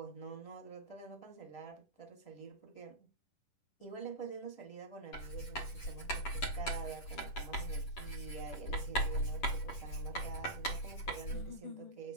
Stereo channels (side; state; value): right; late; 10 ms